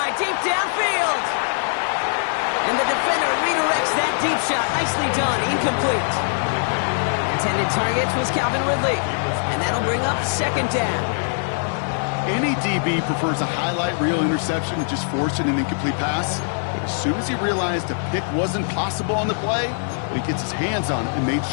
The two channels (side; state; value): right; silent; digital silence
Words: deep downfield. And the defender redirects that deep shot. Nicely done. Incomplete. Intended target was Calvin Ridley. And that'll bring up 2nd down. Any DB prefers a highlight reel interception to just forcing an incomplete pass. But as soon as he realized a pick wasn't possible on the play, he gets his hands on it and made